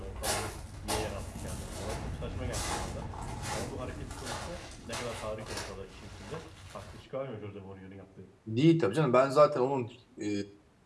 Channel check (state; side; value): identical; both; correlation 1.00